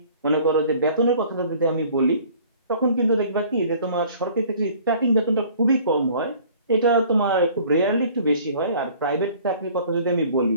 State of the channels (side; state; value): both; inverted; correlation -0.52